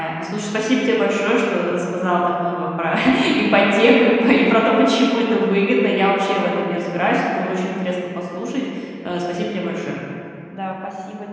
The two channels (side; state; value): both; identical; correlation 1.00